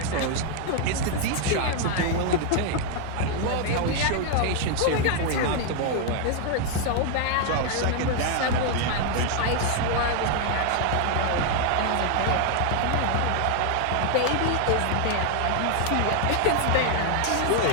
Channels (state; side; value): different; both; correlation 0.00